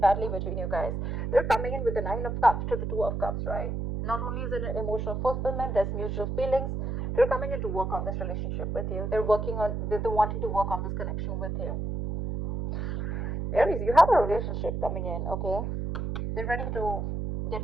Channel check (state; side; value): noise; right; hum, 3 dB below the sound